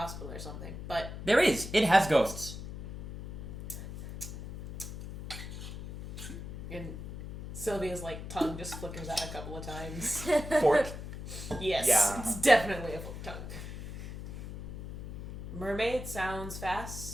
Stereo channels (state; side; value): noise; left; hum, 9 dB below the sound